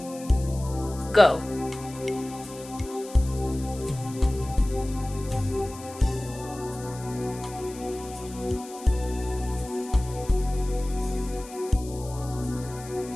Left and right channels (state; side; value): noise; left; hiss, 17 dB below the sound